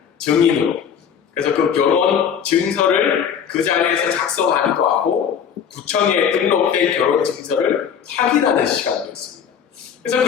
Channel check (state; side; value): quieter; right; 7.8 dB